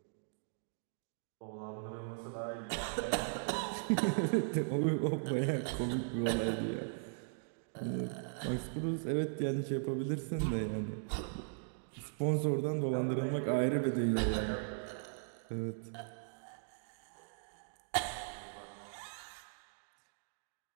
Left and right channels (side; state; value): left; silent; digital silence